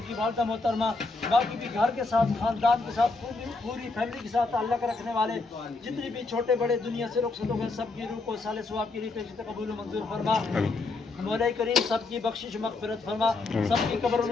کی والدہ محترمہ باقی بھی گھر کے ساتھ خاندان کے ساتھ پوری فیملی کے ساتھ تعلق رکھنے والے جتنے بھی چھوٹے بڑے دنیا سے رخصت ہو گئے سب کی روح کو اصال ثواب کے لیے پیش قبول و منظور فرما. مولا کریم سب کی بخشش مغفرت فرما. سب کی قبروں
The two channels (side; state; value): right; quieter; 3.6 dB